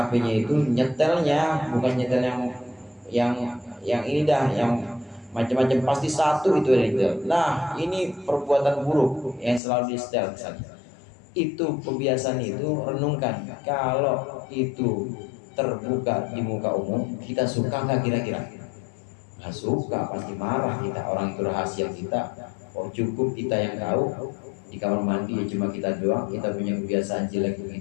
itu nyetelnya bukan nyetel yang ini dah, yang macam-macam, pasti satu itu yang disetel. Nah, ini perbuatan buruk yang selalu disetel misalnya. Itu kebiasaan itu, renungkan, kalau itu terbuka di muka umum, kita suka nggak kira-kira? Nggak suka, pasti marah kita. Orang itu rahasia kita, oh cukup kita yang tahu. Di kamar mandi ya cuma kita doang, kita punya kebiasaan jelek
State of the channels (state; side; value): drops out; right; at 9.6 s